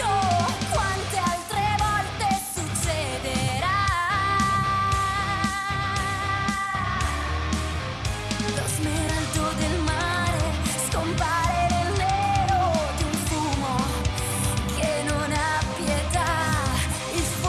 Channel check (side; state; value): both; identical; correlation 1.00